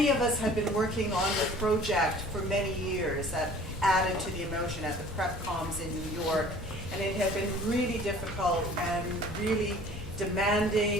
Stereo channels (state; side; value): normal; both; correlation 0.48